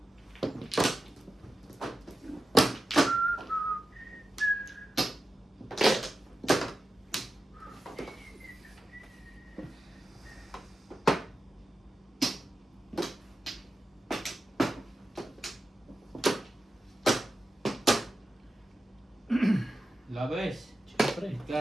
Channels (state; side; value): normal; both; correlation 0.91